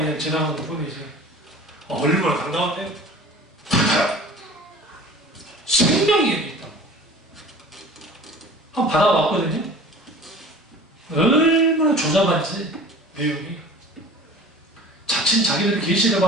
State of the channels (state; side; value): normal; both; correlation 0.42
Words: 지나가는 뿐이지. 얼마나 당당한데? 생명이 있다고. 한번 받아왔거든요. 얼마나 조잡한지 내용이. 자칫 자기들이 계시를